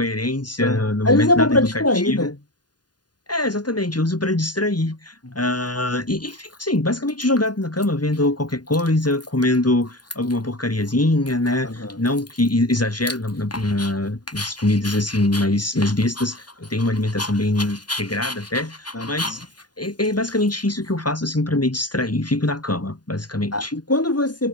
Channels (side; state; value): right; late; 0.70 ms